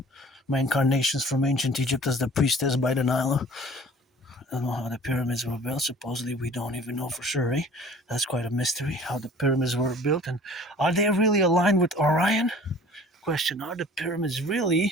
my incarnations from ancient Egypt as the priestess by the Nile, I don't know how the pyramids were built. Supposedly, we don't even know for sure. That's quite a mystery, how the pyramids were built. And are they really aligned with Orion? question: are the pyramids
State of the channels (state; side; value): normal; both; correlation 0.48